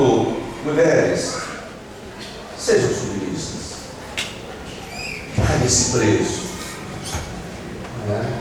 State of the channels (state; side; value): identical; both; correlation 1.00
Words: mulheres, sejam submissas. Pague esse preço.